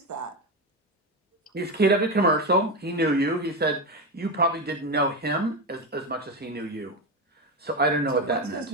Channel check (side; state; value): both; normal; correlation 0.14